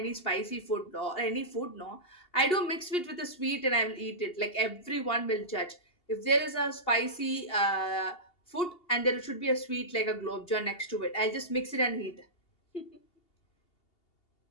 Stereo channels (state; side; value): late; right; 2.8 ms